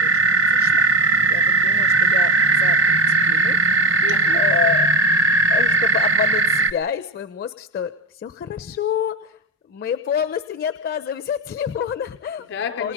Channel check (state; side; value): normal; both; correlation 0.17